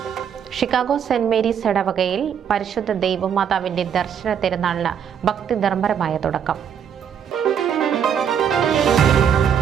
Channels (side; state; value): left; quieter; 8.2 dB